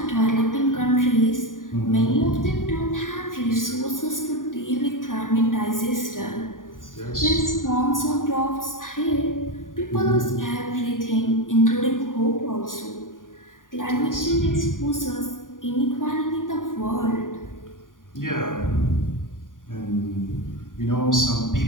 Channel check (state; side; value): late; right; 0.89 ms